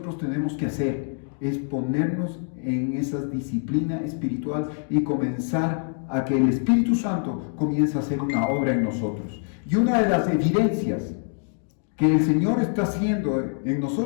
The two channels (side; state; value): right; silent; 55 dB below the other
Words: tenemos que hacer, es ponernos en esa disciplina espiritual y comenzar a que el Espíritu Santo comience a hacer una obra en nosotros. Y una de las evidencias que el Señor está haciendo en